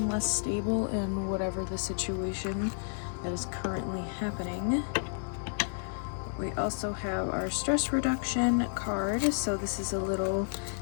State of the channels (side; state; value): right; silent; digital silence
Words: less stable in whatever the situation that is currently happening. We also have our stress reduction card. So this is a little